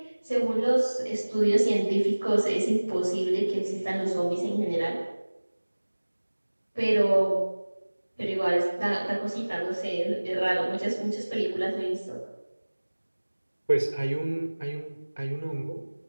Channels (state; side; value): inverted; both; correlation -1.00